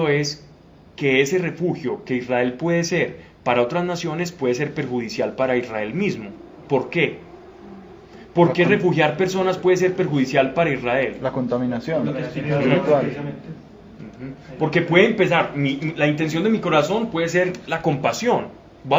es que ese refugio que Israel puede ser para otras naciones puede ser perjudicial para Israel mismo. ¿Por qué? ¿Por qué refugiar personas puede ser perjudicial para Israel? La contaminación Lo que espiritual. precisamente. Porque puede empezar, la intención de mi corazón puede ser la compasión.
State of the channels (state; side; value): identical; both; correlation 1.00